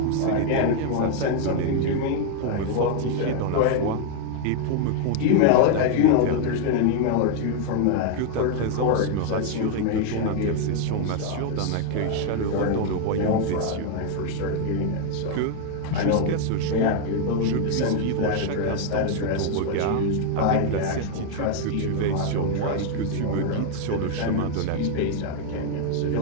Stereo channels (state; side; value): different; both; correlation 0.00